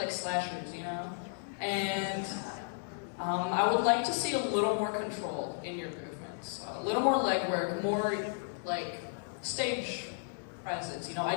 slashers, you know? And I would like to see a little more control in your movements. A little more leg work, more like stage presence. You know,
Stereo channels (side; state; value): right; silent; digital silence